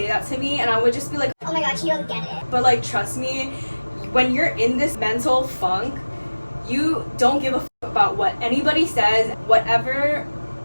that to me and I would just be like, oh my god, you don't get it. But like, trust me, when you're in this mental funk, you don't give a f about what anybody says. Whatever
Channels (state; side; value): inverted; both; correlation -1.00